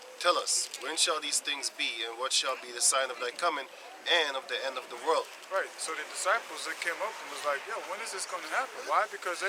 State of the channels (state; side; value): identical; both; correlation 1.00